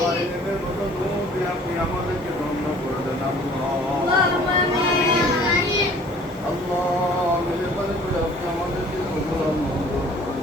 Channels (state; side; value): normal; both; correlation 0.52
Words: ইলমের মতো নূর দিয়ে আপনি আমাদেরকে ধন্য করে দেন আল্লাহ মেহেরবানি করে আপনি আমাদেরকে